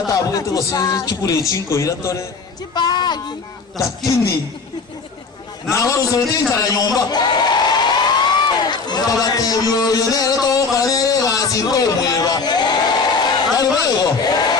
gose chikure chinko iratore chipagi lakini nawe uzotinza nyumba babatebyo yone to kare basinko mweba ari wewe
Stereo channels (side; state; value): right; quieter; 4.6 dB